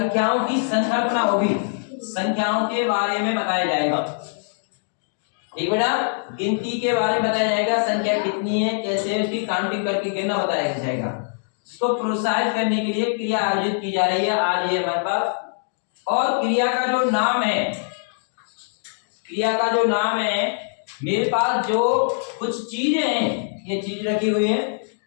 की संकल्पना होगी, संख्याओं के बारे में बताया जाएगा। ठीक बेटा, गिनती के बारे में बताया जाएगा, संख्या कितनी है, कैसे उसकी काउंटिंग करके गिनना बताया जाएगा। इसको प्रोत्साहित करने के लिए क्रिया आयोजित की जा रही है आज ये हमारे पास। और क्रिया का जो नाम है, क्रिया का जो नाम है, मेरे पास जो कुछ चीजें हैं, ये चीज रखी हुई है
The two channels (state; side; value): silent; right; digital silence